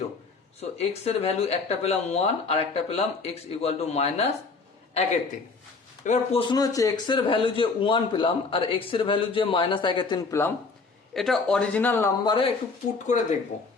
So x এর ভ্যালু একটা পেলাম 1 আর একটা পেলাম x ইকুয়াল টু -1/3। এবার প্রশ্ন হচ্ছে, x এর ভ্যালু যে 1 পেলাম আর x এর ভ্যালু যে -1/3 পেলাম, এটা অরিজিনাল নাম্বারে একটু পুট করে দেখব।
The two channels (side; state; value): right; quieter; 4.4 dB